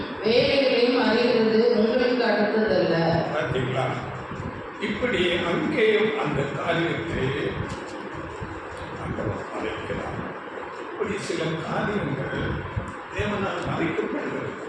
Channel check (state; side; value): identical; both; correlation 1.00